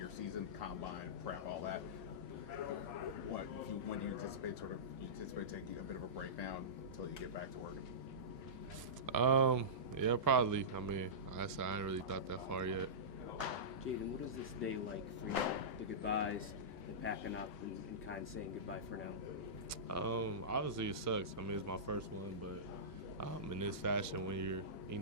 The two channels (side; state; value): both; normal; correlation -0.18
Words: season, combine, prep, all that. When do you anticipate taking a bit of a break down until you get back to working? Yeah, probably. I ain't really thought that far yet. Jaden, what is this day like for you? The goodbyes, the packing up, and kind of saying goodbye for now? Obviously it sucks. It's my first one, but in this fashion, when you're,